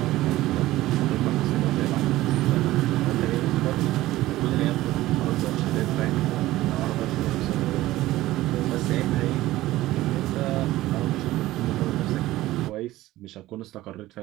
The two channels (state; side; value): quieter; left; 16.4 dB